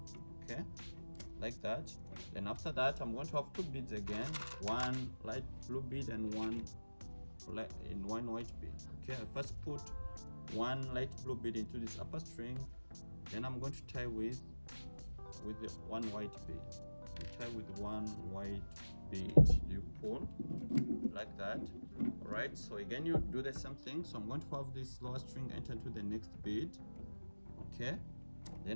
Okay, like that. Then after that, I'm going to have 2 beads again, 1 light blue bead and 1 white bead. Okay, I first put 1 light blue bead into this upper string. Then I'm going to tie with the 1 white bead. you tie with one white bead, you pull like that. All right, so again you do the same thing. So I'm going to have this lower string enter into the next bead. Okay,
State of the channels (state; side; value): inverted; both; correlation -1.00